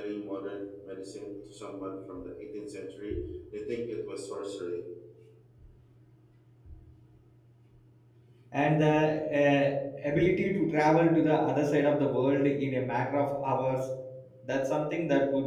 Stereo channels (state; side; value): identical; both; correlation 1.00